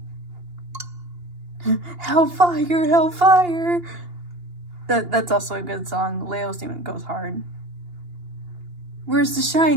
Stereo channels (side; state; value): left; late; 2.8 ms